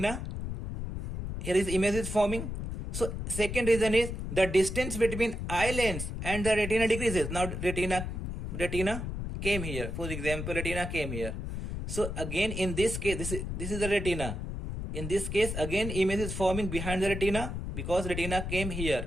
Here is image is forming. So second reason is the distance between eye lens and the retina decreases. Now retina came here. For example, retina came here. So again in this case, this is the retina. In this case, again image is forming behind the retina because retina came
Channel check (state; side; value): noise; left; rumble, 5 dB below the sound